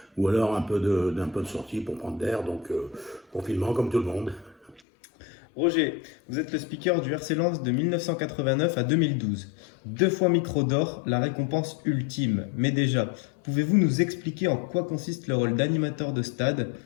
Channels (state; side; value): drops out; right; at 4.8 s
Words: ou alors un peu de sortie pour prendre l'air, donc confinement comme tout le monde. Roger, vous êtes le speaker du RC Lens de 1989 à 2012. Deux fois micro d'or, la récompense ultime. Mais déjà, pouvez-vous nous expliquer en quoi consiste le rôle d'animateur de stade,